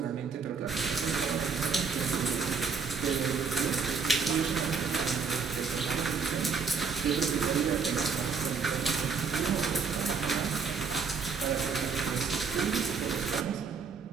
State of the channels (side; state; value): left; quieter; 5.4 dB